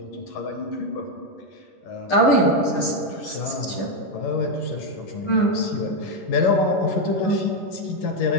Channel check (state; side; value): late; right; 10 ms